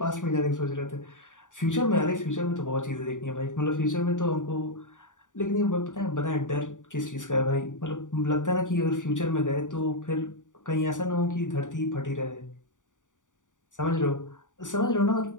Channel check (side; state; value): right; late; 0.87 ms